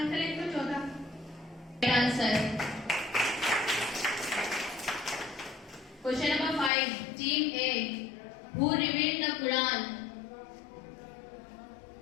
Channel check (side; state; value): right; drops out; at 6.7 s